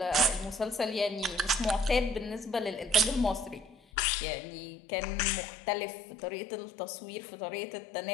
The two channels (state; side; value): drops out; right; at 3.8 s